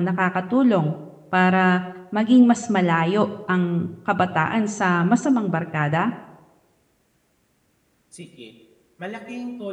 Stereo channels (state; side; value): identical; both; correlation 1.00